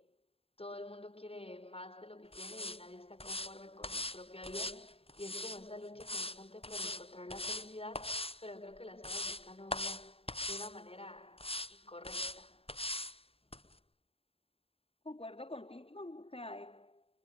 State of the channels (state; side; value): late; right; 0.28 ms